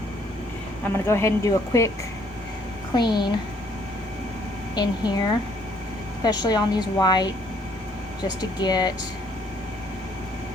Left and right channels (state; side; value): noise; right; hum, 24 dB below the sound